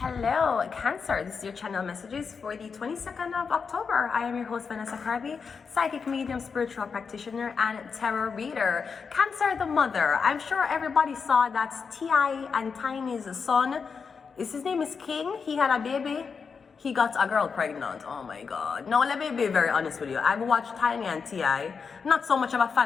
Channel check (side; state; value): right; quieter; 5.6 dB